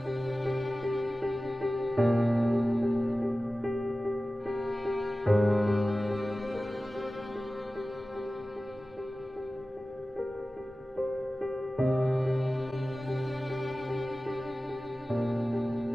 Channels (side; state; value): both; normal; correlation 0.96